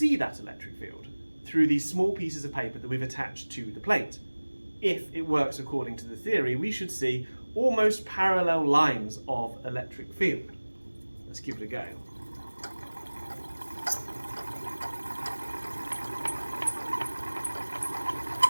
that electric field through these small pieces of paper that we've attached to the plate. If it works according to the theory, we should see almost parallel lines of electric field. Let's give it a go.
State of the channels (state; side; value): inverted; both; correlation -1.00